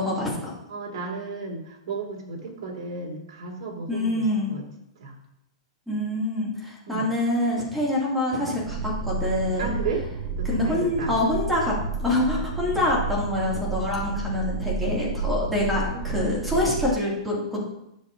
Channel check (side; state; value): both; normal; correlation -0.05